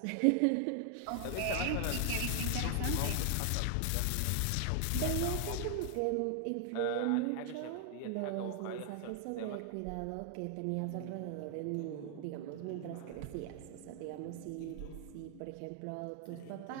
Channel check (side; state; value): both; different; correlation 0.00